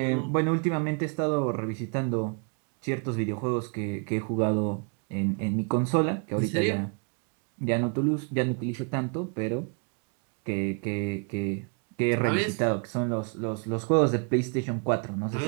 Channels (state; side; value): quieter; left; 37.9 dB